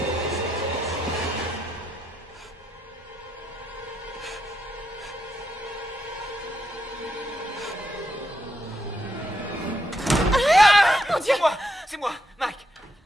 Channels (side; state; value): both; normal; correlation 0.80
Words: C'est moi, Mike.